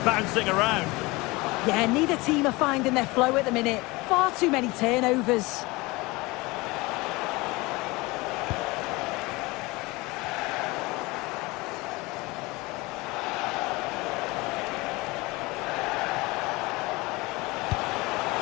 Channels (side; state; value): right; quieter; 23.1 dB